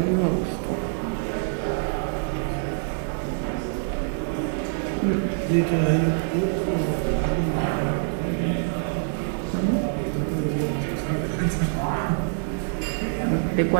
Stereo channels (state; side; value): silent; left; 62 dB below the other